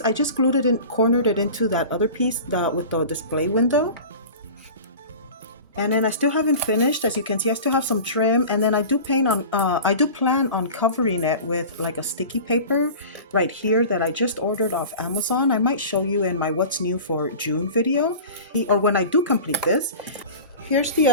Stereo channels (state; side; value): inverted; both; correlation -0.36